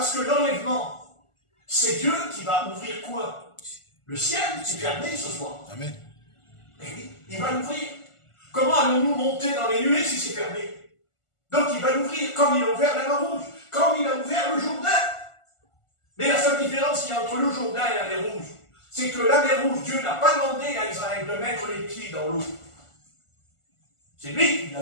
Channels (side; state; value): right; late; 1.4 ms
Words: que l'enlèvement, c'est Dieu qui va ouvrir quoi? Le ciel, c'est fermé ce soir. Amen. Ben oui, il va l'ouvrir. Comment allons-nous monter dans les nuées si c'est fermé? Donc il va l'ouvrir comme il a ouvert la mer Rouge, comme il a ouvert le Jourdain. Mais la seule différence qu'il y a entre le Jourdain et la mer Rouge, c'est que la mer Rouge, Dieu n'a pas demandé à Israël de mettre les pieds dans l'eau. C'est lui qui l'a